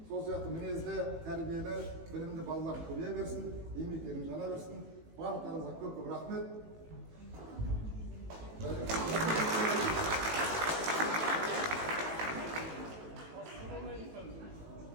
Сол сияқты мінезді, тәрбиелі, білімді балалар көбейе берсін, еңбектерің жана берсін. Барлықтарыңызға көп-көп рахмет.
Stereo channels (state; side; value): late; left; 18 ms